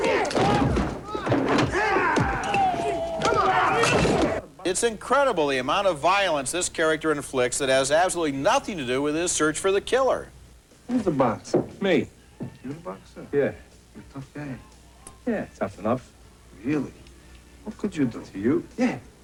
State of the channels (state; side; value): identical; both; correlation 1.00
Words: It's incredible the amount of violence this character inflicts that has absolutely nothing to do with his search for the killer. Who's the boxer? Me. You the boxer? Yeah. You're a tough guy. Yeah, tough enough. Really? What could you do? To you? Yeah.